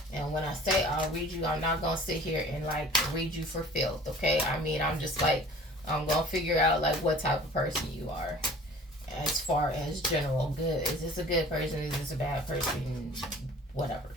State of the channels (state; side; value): normal; both; correlation 0.47